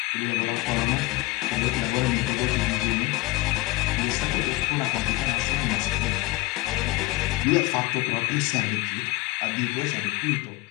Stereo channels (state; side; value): quieter; right; 21.5 dB